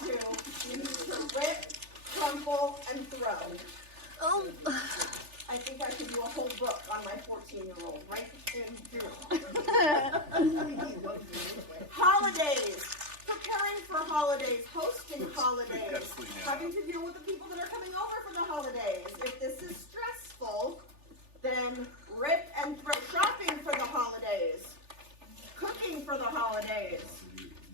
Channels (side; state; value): left; late; 3.4 ms